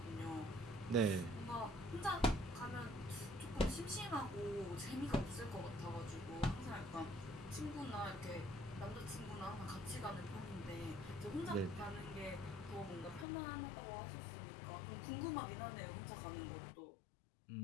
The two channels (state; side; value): drops out; right; at 13.2 s